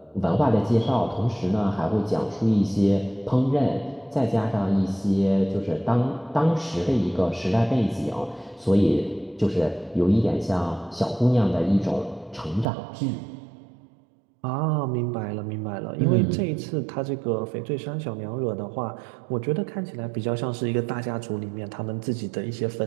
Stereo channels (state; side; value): drops out; left; at 12.7 s